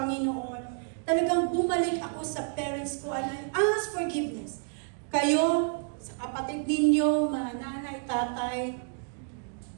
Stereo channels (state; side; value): silent; left; 58 dB below the other